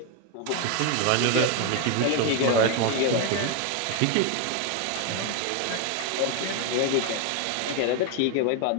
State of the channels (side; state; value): both; different; correlation 0.01